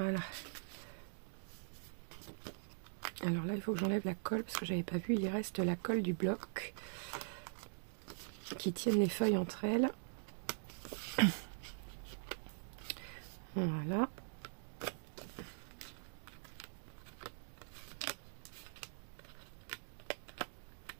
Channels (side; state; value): left; silent; digital silence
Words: Alors là, il faut que j'enlève la colle parce que j'avais pas vu, il reste la colle du bloc qui tiennent les feuilles entre elles. Voilà.